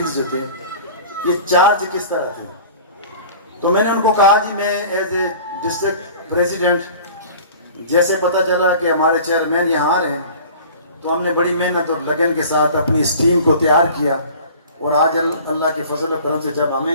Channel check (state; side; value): inverted; both; correlation -0.43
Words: जो थे, ये चार्ज किस तरह थे। तो मैंने उनको कहा जी, मैं एज ए डिस्ट्रिक्ट प्रेसिडेंट, जैसे पता चला कि हमारे चेयरमैन यहाँ आ रहे हैं, तो हमने बड़ी मेहनत और लगन के साथ अपनी इस टीम को तैयार किया और आज अल्लाह के फजल करम से जब